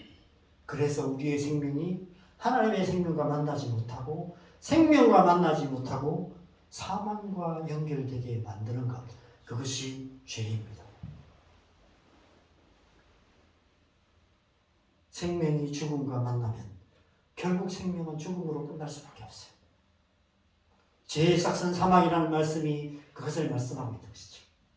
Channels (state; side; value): identical; both; correlation 1.00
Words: 그래서 우리의 생명이 하나님의 생명과 만나지 못하고 생명과 만나지 못하고 사망과 연결되게 만드는 것, 그것이 죄입니다. 생명이 죽음과 만나면 결국 생명은 죽음으로 끝날 수밖에 없어요. 죄의 삭은 사망이라는 말씀이 그것을 말씀하고 있는 것이죠.